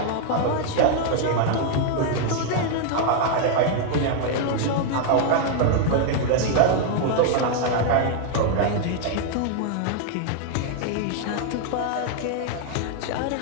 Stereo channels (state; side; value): different; both; correlation 0.00